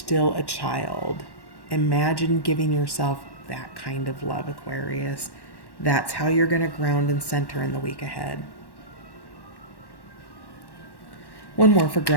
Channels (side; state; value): right; late; 1.1 ms